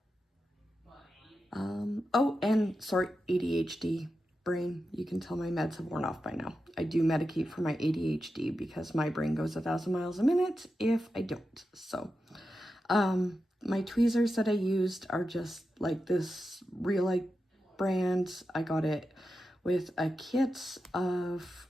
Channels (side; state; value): both; normal; correlation 0.90